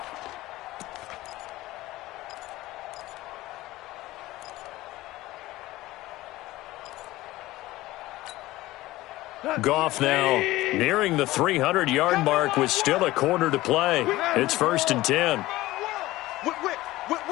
Goff now nearing the 300-yard mark with still a quarter to play. It's 1st and 10. Whip.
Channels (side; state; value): right; quieter; 17.6 dB